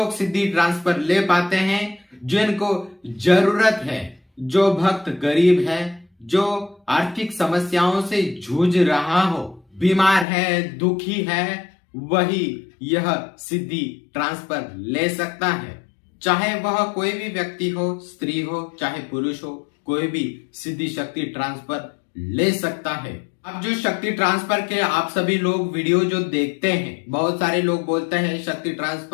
सिद्धि ट्रांसफर ले पाते हैं जिनको जरूरत है। जो भक्त गरीब है, जो आर्थिक समस्याओं से जूझ रहा हो, बीमार है, दुखी है, वही यह सिद्धि ट्रांसफर ले सकता है। चाहे वह कोई भी व्यक्ति हो, स्त्री हो चाहे पुरुष हो, कोई भी सिद्धि शक्ति ट्रांसफर ले सकता है। अब जो शक्ति ट्रांसफर के आप सभी लोग वीडियो जो देखते हैं, बहुत सारे लोग बोलते हैं शक्ति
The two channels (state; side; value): drops out; right; at 10.2 s